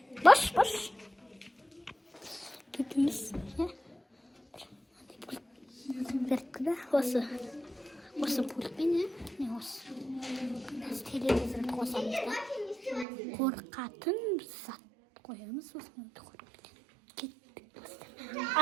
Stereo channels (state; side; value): drops out; left; at 13.1 s